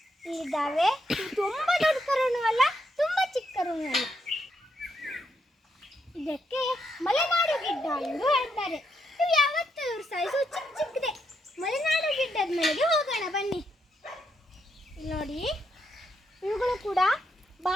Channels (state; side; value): normal; both; correlation 0.79